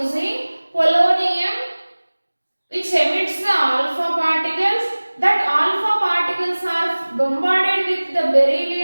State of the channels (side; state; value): both; inverted; correlation -1.00